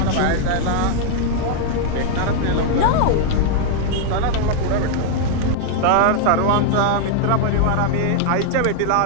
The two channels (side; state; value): both; different; correlation 0.00